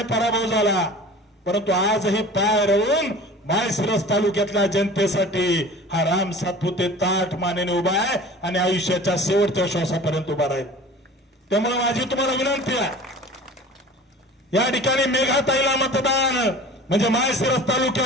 पराभव झाला, परंतु आजही पाय रोवून माळशिरस तालुक्यातल्या जनतेसाठी हा राम सातपुते ताठ मानेने उभा आहे आणि आयुष्याच्या शेवटच्या श्वासापर्यंत उभा राहील. त्यामुळे माझी तुम्हाला विनंती आहे, या ठिकाणी मेघाताईला मतदान म्हणजे माळशिरस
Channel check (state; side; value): normal; both; correlation 0.41